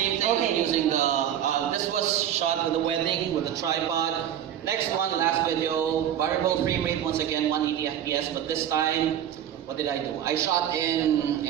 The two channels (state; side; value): quieter; left; 10.4 dB